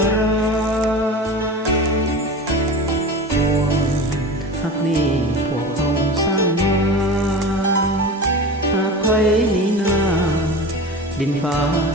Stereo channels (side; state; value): both; normal; correlation 0.31